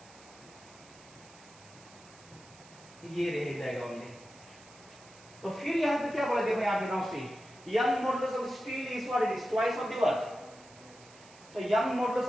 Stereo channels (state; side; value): noise; right; hiss, 23 dB below the sound